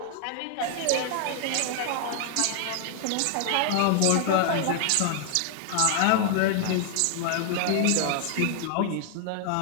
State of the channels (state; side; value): different; both; correlation 0.00